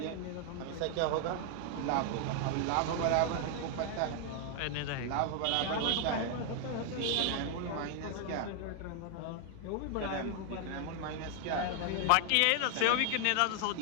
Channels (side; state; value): both; different; correlation 0.00